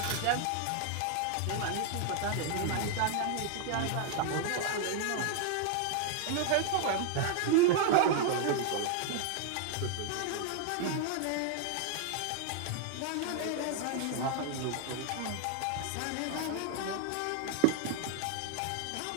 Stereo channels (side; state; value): both; different; correlation 0.00